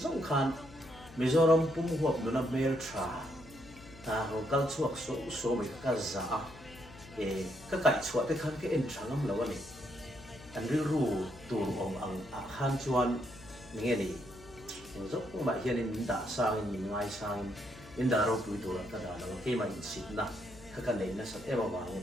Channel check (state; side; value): noise; left; hum, 19 dB below the sound